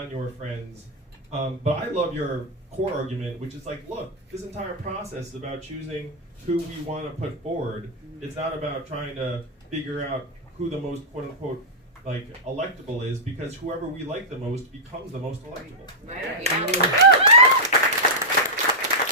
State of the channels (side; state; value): both; normal; correlation -0.09